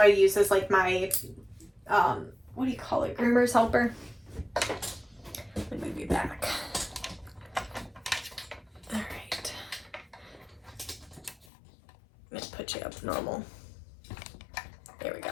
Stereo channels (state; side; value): drops out; right; at 11.5 s